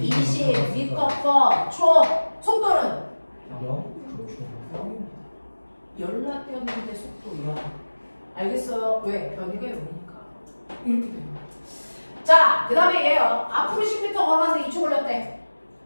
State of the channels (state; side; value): inverted; both; correlation -1.00